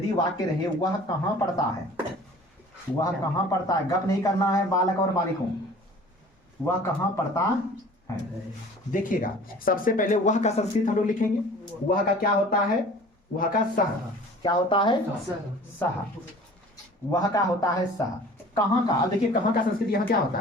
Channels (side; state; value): both; normal; correlation 0.46